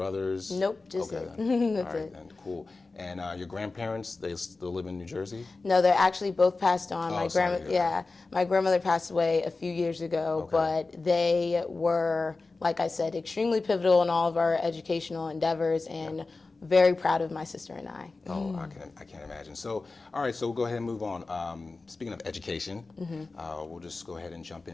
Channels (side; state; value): right; quieter; 3.7 dB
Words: Nope, just it. That's it. And cool. And your grandparents, they still live in New Jersey? No, they're actually both passed on. Oh, My grandmother passed away a few years ago, but they were, like I said, extremely pivotal in all of our educational endeavors, and very proud of my sister and I. Oh, I can't imagine. So, all right, so we'll go ahead and move on. Speaking of education, we'll just go ahead and jump